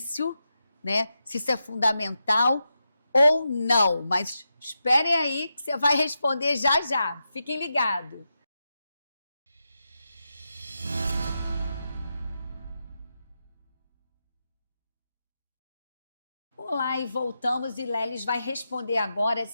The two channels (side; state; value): both; inverted; correlation -0.88